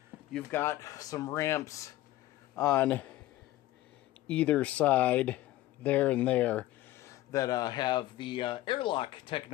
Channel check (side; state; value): right; quieter; 15.7 dB